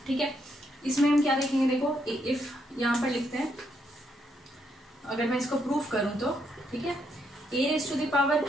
ठीक है। इसमें हम क्या देखेंगे, देखो if यहाँ पर लिखते हैं, अगर मैं इसको प्रूफ करूं तो, ठीक है, a raise to the power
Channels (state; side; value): normal; both; correlation 0.76